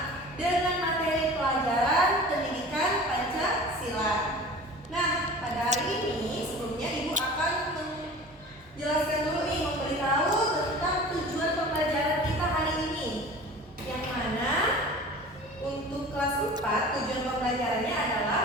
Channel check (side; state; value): both; normal; correlation 0.40